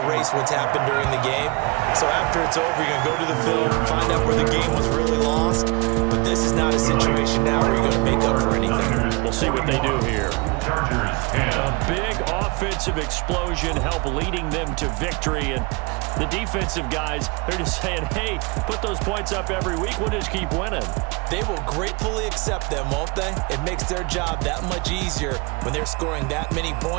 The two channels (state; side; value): quieter; left; 27.5 dB